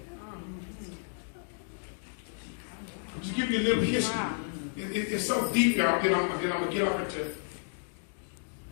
Just give you a little history. It's so deep, y'all. Then I'm going to get off into it.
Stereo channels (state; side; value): silent; right; 57 dB below the other